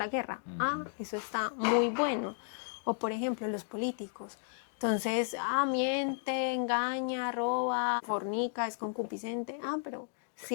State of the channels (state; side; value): silent; right; digital silence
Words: guerra. Eso está muy bueno. O por ejemplo, los políticos. Entonces, miente, engaña, roba, fornica, es concupiscente. Pero